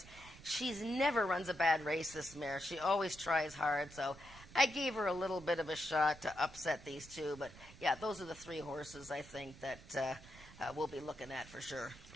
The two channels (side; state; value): right; noise; rumble, 19 dB below the sound